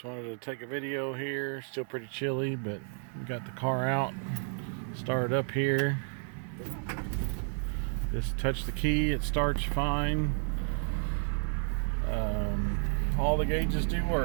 wanted to take a video here. Still pretty chilly, but we got the car out. Started up here. Just touch the key, it starts fine. All the gauges do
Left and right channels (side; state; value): left; silent; 57 dB below the other